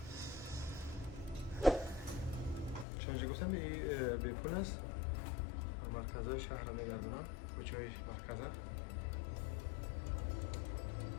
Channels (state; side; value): drops out; right; at 2.9 s